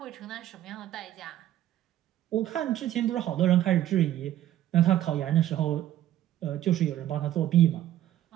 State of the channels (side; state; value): left; quieter; 12.6 dB